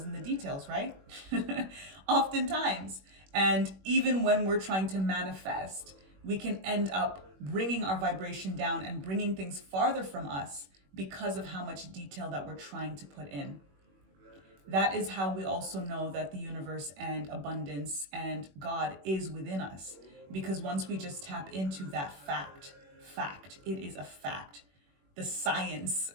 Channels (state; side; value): late; left; 21 ms